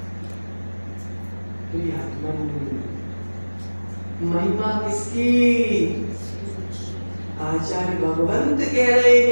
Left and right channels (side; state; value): both; inverted; correlation -1.00